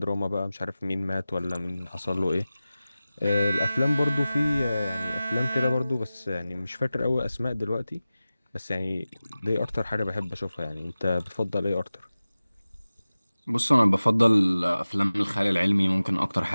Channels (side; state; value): both; inverted; correlation -0.96